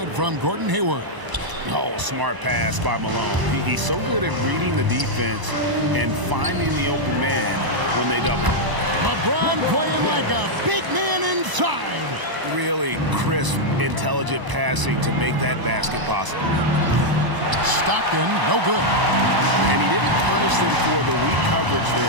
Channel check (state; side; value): late; left; 1.0 ms